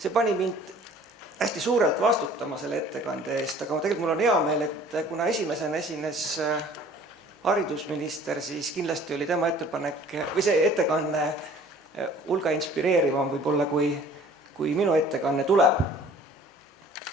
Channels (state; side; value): normal; both; correlation 0.50